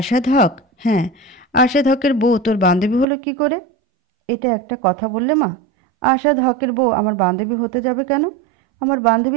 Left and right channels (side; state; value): left; drops out; at 3.1 s